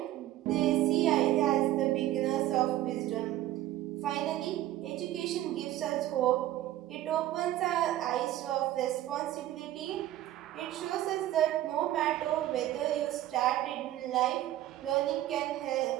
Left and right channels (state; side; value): quieter; left; 14.0 dB